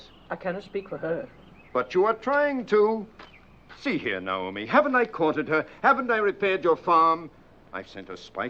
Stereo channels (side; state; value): both; identical; correlation 1.00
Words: I cannot speak for her. But you are trying to. See here, Naomi. Haven't I courted her? Haven't I repaired your farm? I've sent her